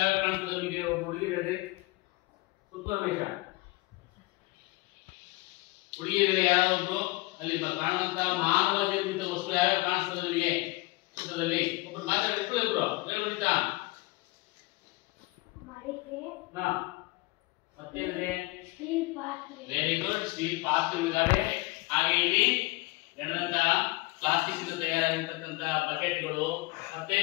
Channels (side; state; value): right; quieter; 22.8 dB